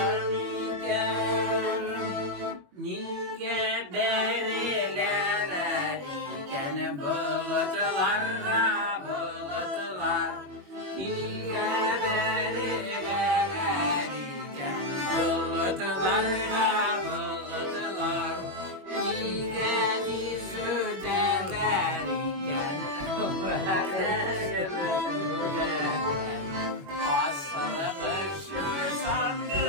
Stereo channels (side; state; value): left; late; 21 ms